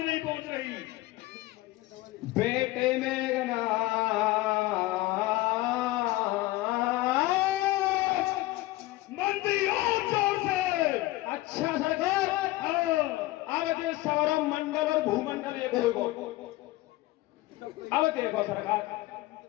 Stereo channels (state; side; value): quieter; right; 18.4 dB